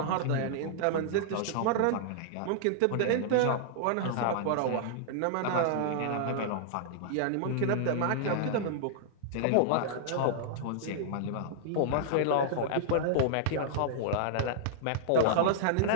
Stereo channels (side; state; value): both; different; correlation -0.01